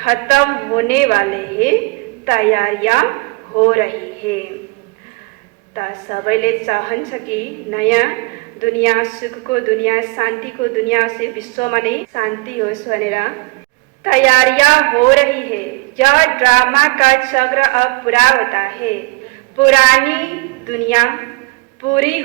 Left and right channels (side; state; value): left; quieter; 27.4 dB